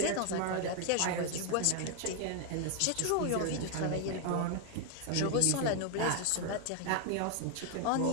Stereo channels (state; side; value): different; both; correlation 0.00